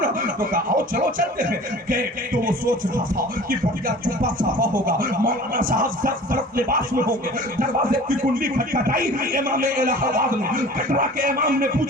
نا. تو کہا آؤ چلو چلتے ہیں. کہ تو وہ سوچ رہا تھا کہ بڑھیا چپا صافا ہوگا, مولانا صاحب سب طرف لباس میں ہوں گے. دروازے کی کنڈی کھٹکھٹائی, امام الہ آباد نے کٹرا کے امام نے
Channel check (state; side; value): normal; both; correlation 0.43